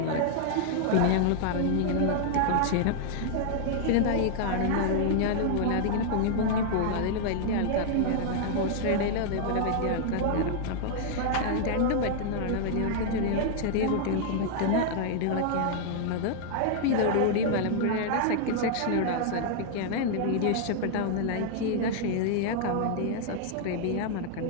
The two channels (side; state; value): both; different; correlation -0.01